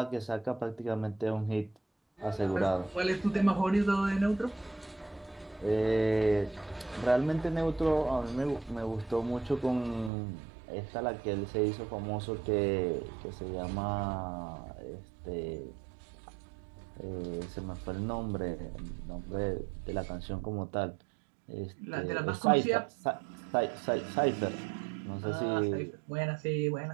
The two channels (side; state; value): left; drops out; at 10.1 s